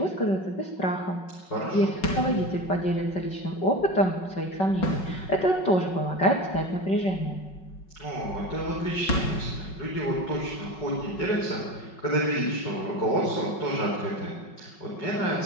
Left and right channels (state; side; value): late; right; 5.4 ms